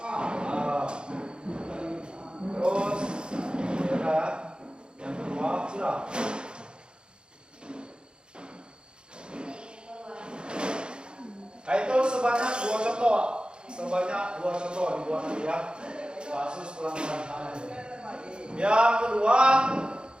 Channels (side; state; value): left; late; 0.051 ms